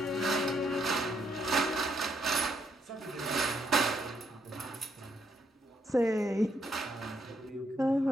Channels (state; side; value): normal; both; correlation 0.75